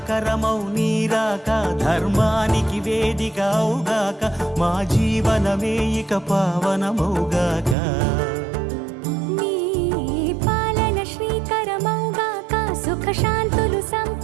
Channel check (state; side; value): drops out; left; at 7.8 s